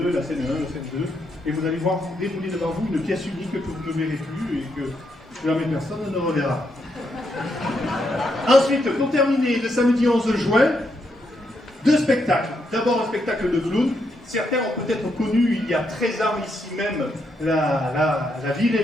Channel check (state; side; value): normal; both; correlation 0.79